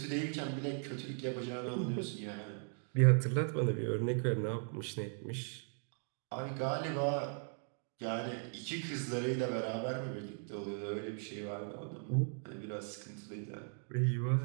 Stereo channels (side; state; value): left; silent; 52 dB below the other